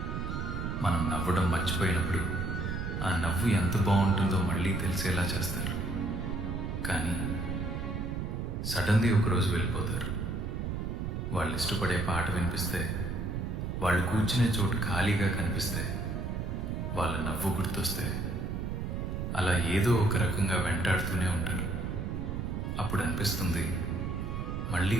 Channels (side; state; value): right; noise; rumble, 3 dB below the sound